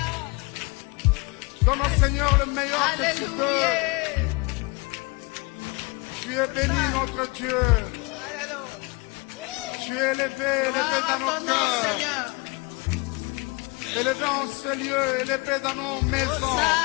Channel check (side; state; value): right; quieter; 27.6 dB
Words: Donne au Seigneur le meilleur que tu peux. Tu es béni, notre Dieu. Tu es élevé, élevé dans nos cœurs. Élevé en ce lieu, élevé dans nos maisons.